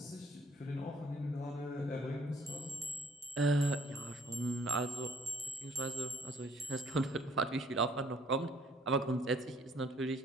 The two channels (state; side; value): normal; both; correlation 0.61